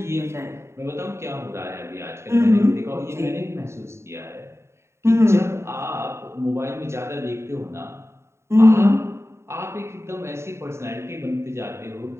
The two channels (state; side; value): late; left; 0.13 ms